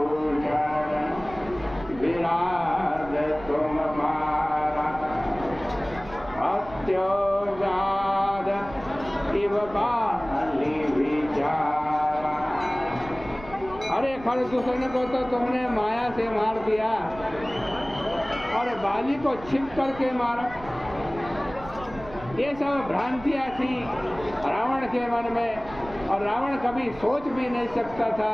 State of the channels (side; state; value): right; noise; rumble, 17 dB below the sound